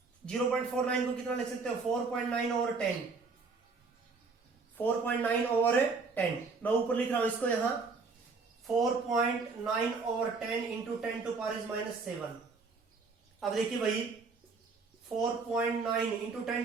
0.49 को कितना लिख सकते हो, 4.9 ओवर 10, 4.9 ओवर 10। मैं ऊपर लिख रहा हूं इसको यहां 4.9 over 10 into 10 to power is -7। अब देखिए भाई 4.9 इंटू 10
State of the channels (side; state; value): left; quieter; 4.4 dB